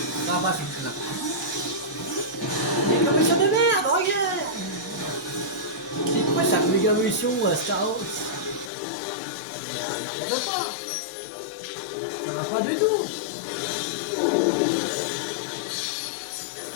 ça va, c'est là. Mais comme ça de merde, regarde. C'est quoi cette méga évolution Star Wars? Mais n'importe quoi. Ça va pas du tout.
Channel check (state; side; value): drops out; right; at 8.7 s